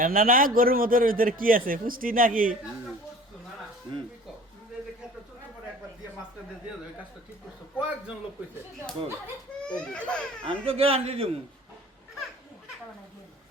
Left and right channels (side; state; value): both; normal; correlation 0.46